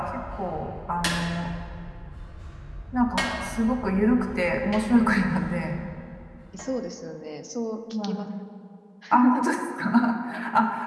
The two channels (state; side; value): identical; both; correlation 1.00